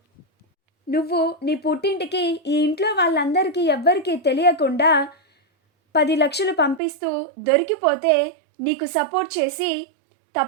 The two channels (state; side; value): drops out; left; at 6.8 s